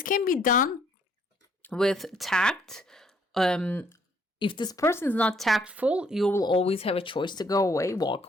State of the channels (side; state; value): both; normal; correlation 0.66